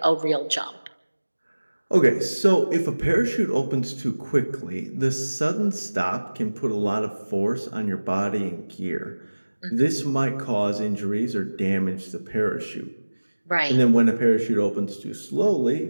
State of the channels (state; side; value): inverted; both; correlation -1.00